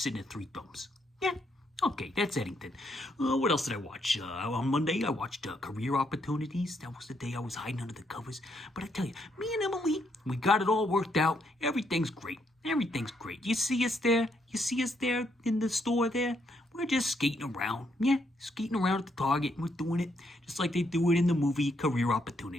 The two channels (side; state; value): both; normal; correlation 0.75